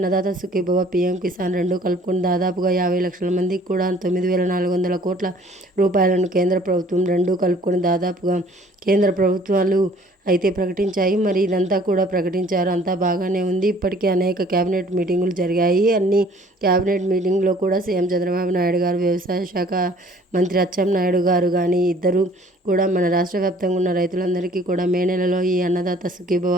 సుఖీభవ, పీఎం కిసాన్ రెండు కలుపుకుని దాదాపుగా 50 లక్షల మందికి కూడా 9,400 కోట్ల రూపాయలను కేంద్ర ప్రభుత్వం రెండు కలుపుకొని దాదాపుగా కేంద్ర ప్రభుత్వాలు అయితే ప్రకటించాయి. మరి ఇదంతా కూడా ప్రకటించారు, అంతా బాగానే ఉంది. ఇప్పటికే అనేక క్యాబినెట్ మీటింగులు జరిగాయి. అన్ని క్యాబినెట్ మీటింగ్లో కూడా సీఎం చంద్రబాబు నాయుడు గారు, వ్యవసాయ శాఖ మంత్రి అచ్చెన్నాయుడు గారు కానీ ఇద్దరు కూడా మన రాష్ట్ర వ్యాప్తంగా ఉన్న రైతులందరికీ కూడా మే నెలలో ఈ అన్నదాత సుఖీభవ,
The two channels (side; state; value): both; normal; correlation 0.55